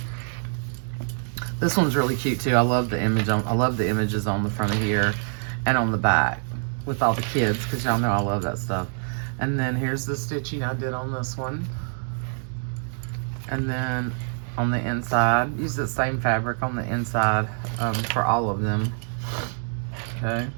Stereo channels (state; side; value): silent; left; digital silence